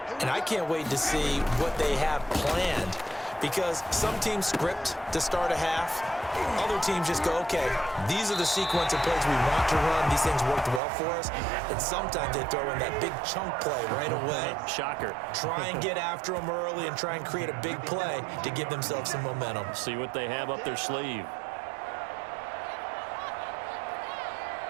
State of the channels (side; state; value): left; drops out; at 10.8 s